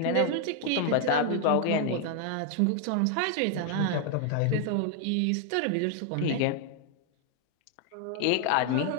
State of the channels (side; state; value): both; different; correlation 0.00